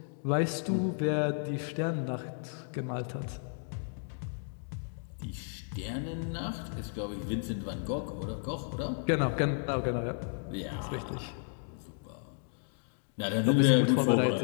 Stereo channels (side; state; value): right; silent; digital silence